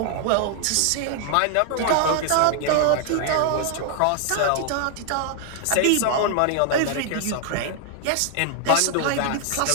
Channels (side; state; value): both; different; correlation 0.00